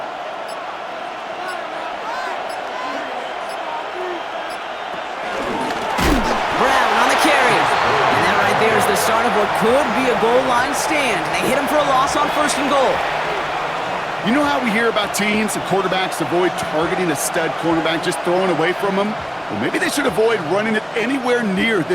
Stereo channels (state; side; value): identical; both; correlation 1.00